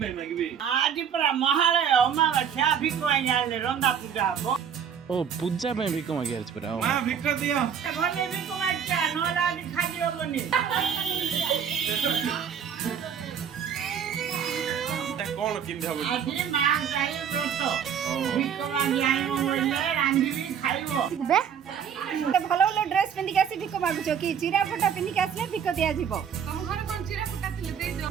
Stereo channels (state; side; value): quieter; left; 7.9 dB